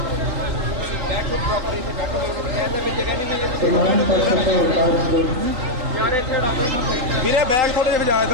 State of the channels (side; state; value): left; late; 3.9 ms